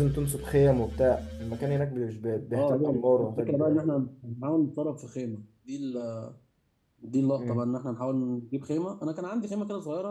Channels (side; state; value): both; identical; correlation 1.00